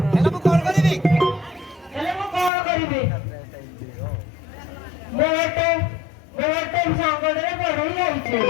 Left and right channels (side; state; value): right; drops out; at 2.5 s